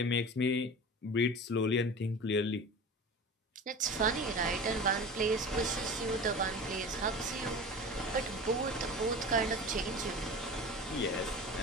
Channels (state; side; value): normal; both; correlation 0.34